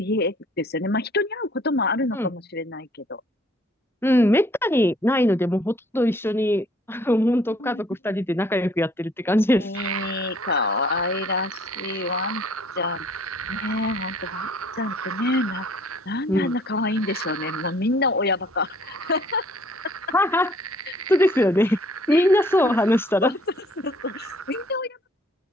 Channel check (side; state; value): both; normal; correlation 0.58